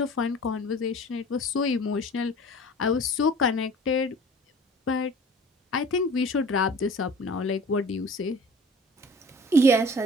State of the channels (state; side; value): normal; both; correlation 0.45